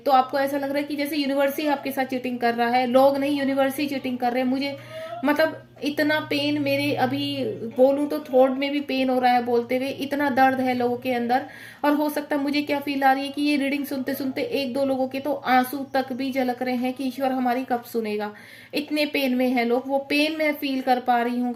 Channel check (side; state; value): both; identical; correlation 1.00